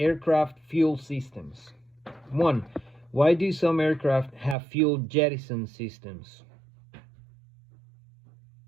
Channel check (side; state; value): left; drops out; at 4.5 s